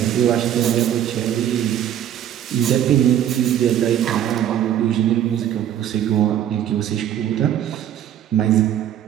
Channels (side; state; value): left; quieter; 10.6 dB